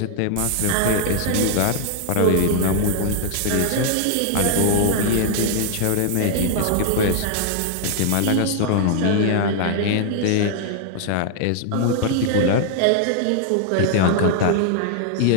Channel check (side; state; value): both; different; correlation -0.01